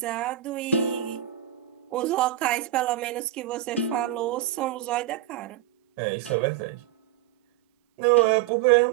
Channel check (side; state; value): left; quieter; 12.4 dB